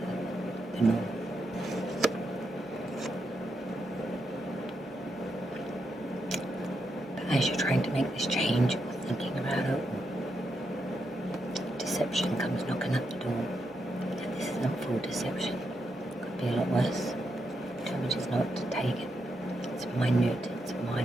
the norm. But as you're trying to make this change or thinking about it, deception comes knocking at the door. And this isn't full deception. Could be a lot worse. Tell me just not to take it. It's minute, it's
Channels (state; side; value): normal; both; correlation 0.82